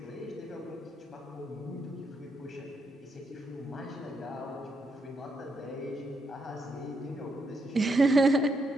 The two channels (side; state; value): both; normal; correlation 0.79